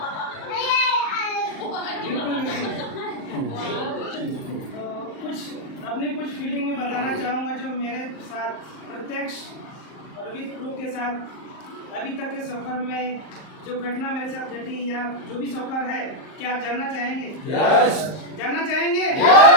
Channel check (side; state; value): right; late; 38 ms